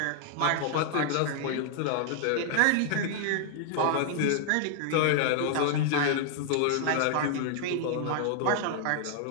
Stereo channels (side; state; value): both; different; correlation 0.00